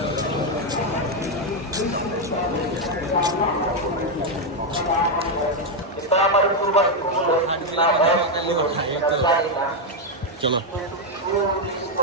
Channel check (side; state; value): both; normal; correlation 0.03